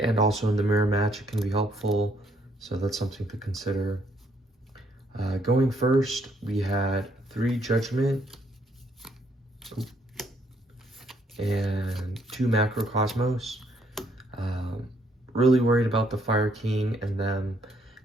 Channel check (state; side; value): normal; both; correlation 0.69